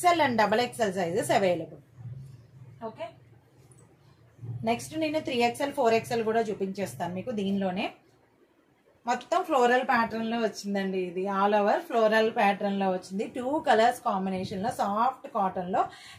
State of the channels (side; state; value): both; identical; correlation 1.00